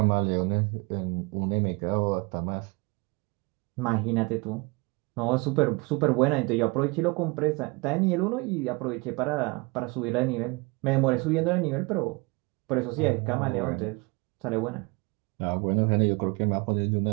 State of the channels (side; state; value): left; quieter; 27.4 dB